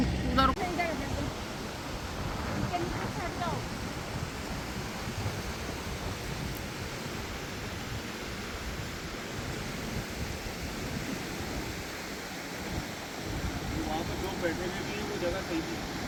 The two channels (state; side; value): identical; both; correlation 1.00